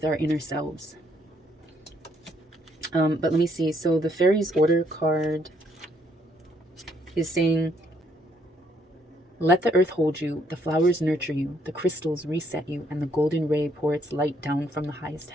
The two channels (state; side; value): normal; both; correlation 0.70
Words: our inner selves. But let me see. So the Fairies Order card is saying, let the earth hold you, the flowers nurture you, the crystals reset you, and the golden ray pour its light down from the highest